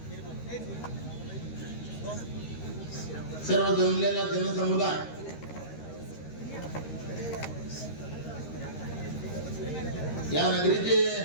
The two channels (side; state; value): right; late; 13 ms